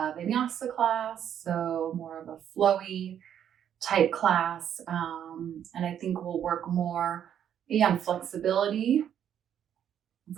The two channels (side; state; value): left; quieter; 9.5 dB